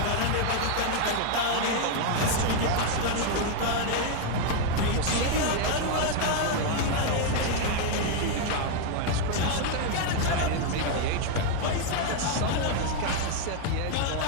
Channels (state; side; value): different; both; correlation 0.01